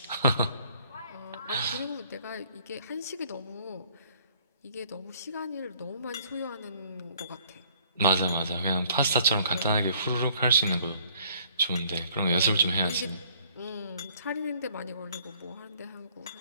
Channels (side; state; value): both; inverted; correlation -0.60